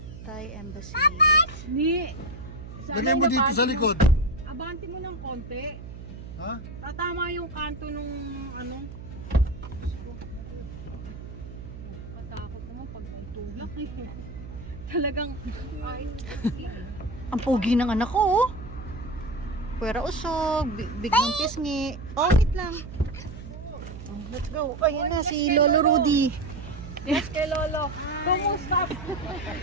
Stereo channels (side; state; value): right; noise; hum, 12 dB below the sound